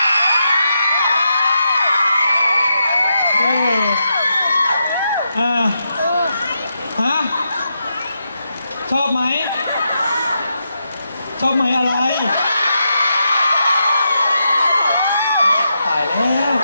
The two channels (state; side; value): inverted; both; correlation -0.84